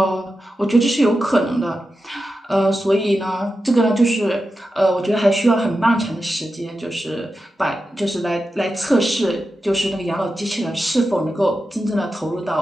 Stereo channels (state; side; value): normal; both; correlation 0.91